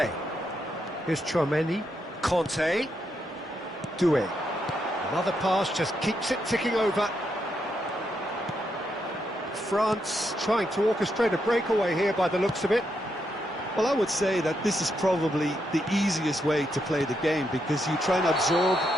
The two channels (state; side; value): normal; both; correlation 0.80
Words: Here's Chouameni. Conte. Doué. Another pass just keeps it ticking over. France trying to orchestrate a breakaway here by the looks of it. Well, I would say that this is probably the easiest way to play the game, because you try and absorb